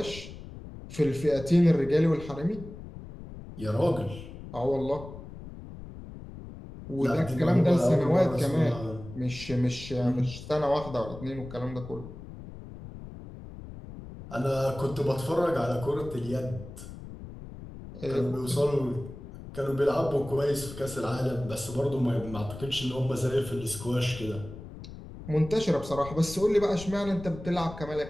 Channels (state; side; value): noise; left; rumble, 13 dB below the sound